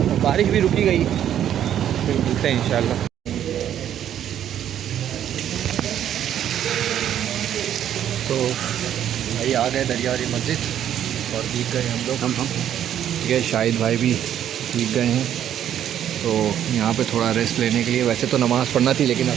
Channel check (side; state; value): left; quieter; 10.4 dB